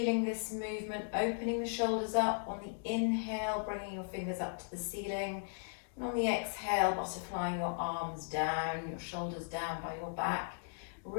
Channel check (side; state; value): right; silent; digital silence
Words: this movement, opening the shoulders up. On the inhale, bringing your fingers up to the ceiling. And on the exhale, butterflying your arms down, your shoulders down by your back.